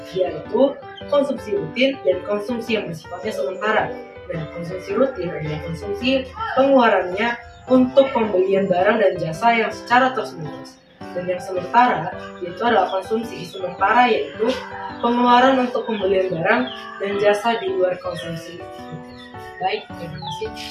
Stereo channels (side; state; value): both; identical; correlation 1.00